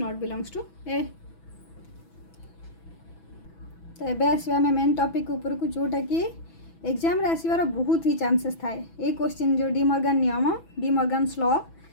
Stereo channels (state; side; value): late; right; 6.1 ms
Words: belongs to A. तो ये आसवा आम मेन टॉपिक ऊपर को जोटा कि एग्जाम रे आसबार बहुत ही चांसेस थाए ये क्वेश्चन जो डी मॉर्गन नियम डी मॉर्गन्स लॉ